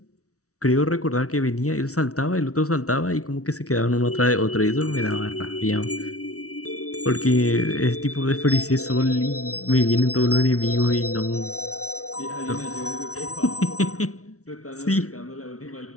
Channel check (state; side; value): late; right; 0.65 ms